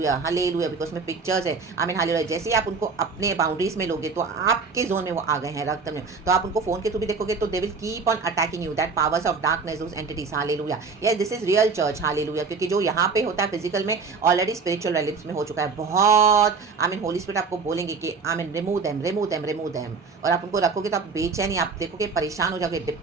हालेलुया, बिकॉज में पिक्चर्स है, आमीन, हालेलुया। जैसे ही आप उनको अपने बाउंड्रीज में लोगे तो आपके जोन में वो आ गए हैं, रक्तम जयम। तो आप उनको फोन के थ्रू भी देखोगे तो दे will keep on attacking you, that powers of darkness, those entities, hallelujah. Yes, this is real church, hallelujah, क्योंकि जो यहाँ पे होता है फिजिकल में ऑलरेडी स्पिरिचुअल रिलेम्स में हो चुका है बहुत, आमीन। होली स्पिरिट आपको बोलेंगे कि आमीन, रिमूव देम, और आप उनको रखोगे तो आप बेचैनी, आप देखोगे परेशान हो जाओगे,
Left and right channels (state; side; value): quieter; left; 4.8 dB